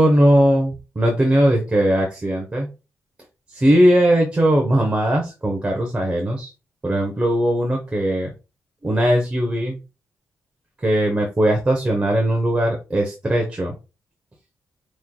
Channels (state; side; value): normal; both; correlation 0.90